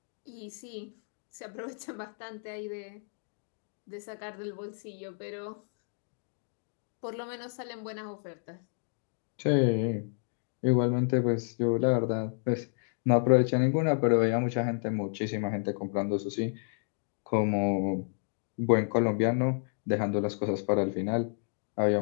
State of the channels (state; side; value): silent; right; 57 dB below the other